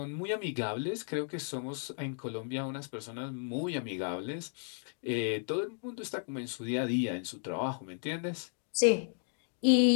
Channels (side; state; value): right; silent; 55 dB below the other